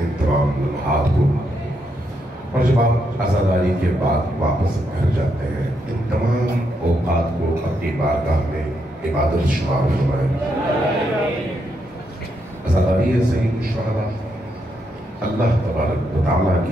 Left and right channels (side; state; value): both; normal; correlation 0.79